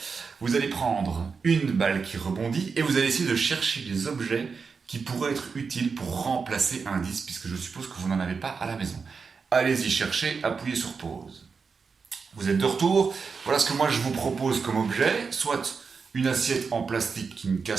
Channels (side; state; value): left; quieter; 5.2 dB